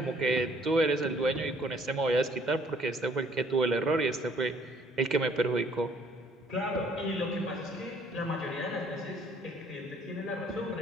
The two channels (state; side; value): normal; both; correlation 0.61